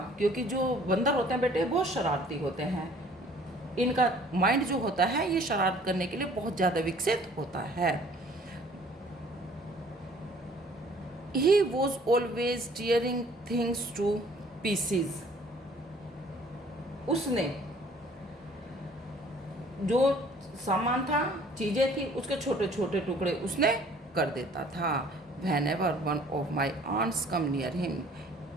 क्योंकि जो बंदर होते हैं बेटे बहुत शरारती होते हैं, इनका माइंड जो होता है ये शरारत करने के लिए बहुत ज़्यादा विकसित होता है। He was always tearing things to pieces. उसने जो सामान था, चीज़ें थी, उसके छोटे छोटे टुकड़े उसने कर देता था। Whenever one of my aunts come near him,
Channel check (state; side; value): normal; both; correlation 0.55